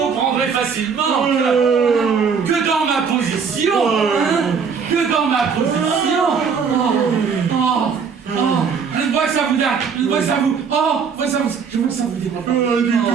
facilement que dans ma position, je vois que ça vous donne, je vois que ça vous, je vois que ça vous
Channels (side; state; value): left; quieter; 6.1 dB